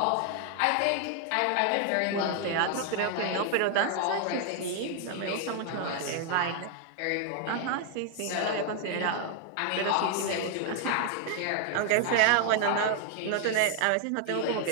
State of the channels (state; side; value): different; both; correlation 0.00